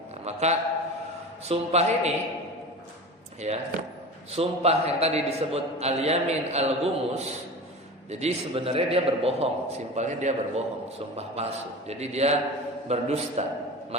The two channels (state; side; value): normal; both; correlation 0.32